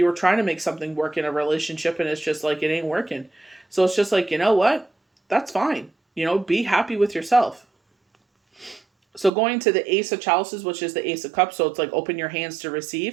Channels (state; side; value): drops out; left; at 9.3 s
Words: were trying to make something work in a relationship, and it's just like, it ain't working. So it's just like, you know what? That's fine. Be happy with yourself. So going to the Ace of Chalices, which is the Ace of Cups, so it's like open your hands to